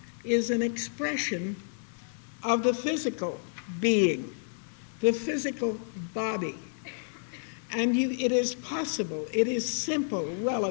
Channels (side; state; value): right; silent; 58 dB below the other